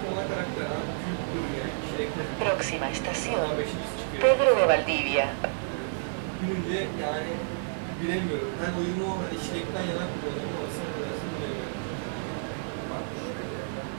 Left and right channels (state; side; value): silent; left; digital silence